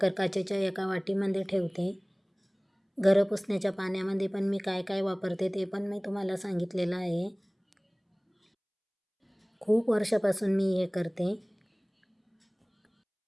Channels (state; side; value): identical; both; correlation 1.00